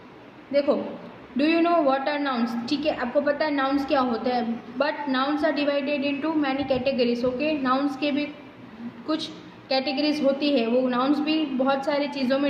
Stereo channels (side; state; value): both; identical; correlation 1.00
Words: देखो, do you know what are nouns? ठीक है, आपको पता है nouns क्या होते हैं, but nouns are divided into many categories. Okay. Nouns के भी कुछ कैटेगरीज होती है, वो नाउन्स भी बहुत सारी चीज़ों